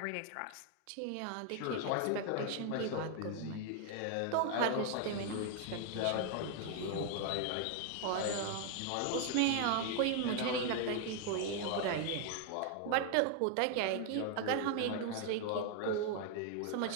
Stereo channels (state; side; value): different; both; correlation 0.00